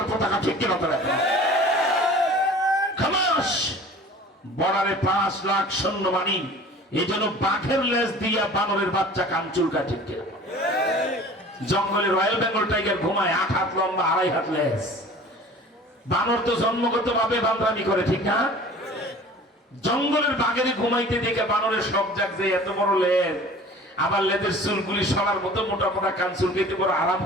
পতাকা। ঠিক কিনা? বর্ডারে 5 লাখ সৈন্যবাহিনী, এই জন্য বাঘের লেজ দিয়া বানরের বাচ্চা কান চুলকায়। ঠিক কিনা? জঙ্গলে রয়্যাল বেঙ্গল টাইগার ঘুমায়, 8 হাত লম্বা, 2.5 হাত লেজ। বানর তো জন্মগত ভাবে বান্দামি করে। ঠিক না? জঙ্গলের বাঘের ঘুমাইতে দেখে বানরের শখ জাগছে, এত বড় লেজ, আবার লেজের চুলগুলি সরার মতো মোটা মোটা কান চুলকাইতে বড় আরাম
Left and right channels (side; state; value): both; normal; correlation 0.44